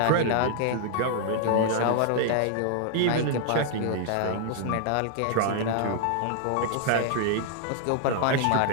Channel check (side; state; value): both; different; correlation -0.01